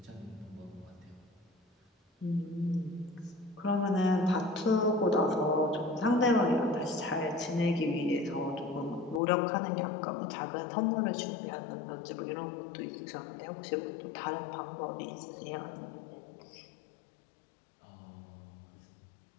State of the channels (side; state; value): right; drops out; at 9.2 s